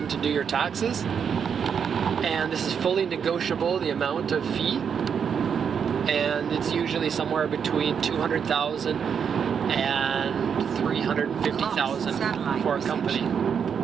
to do your taxes, and this is fully negotiable, the amount of fee, and it's usually somewhere between 200,000 and 350,000 for a company.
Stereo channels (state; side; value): quieter; left; 7.2 dB